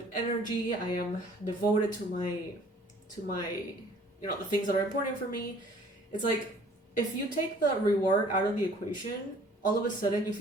energy. I am devoted to my, you know, the things that are important for me. It's like, if you take the reward out of the equation, all of a sudden you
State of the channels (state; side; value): normal; both; correlation 0.54